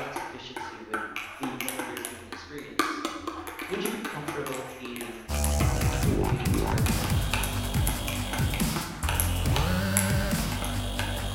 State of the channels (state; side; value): identical; both; correlation 1.00